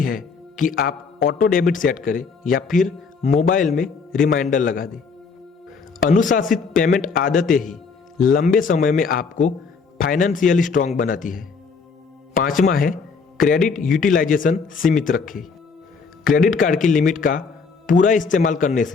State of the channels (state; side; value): quieter; right; 5.1 dB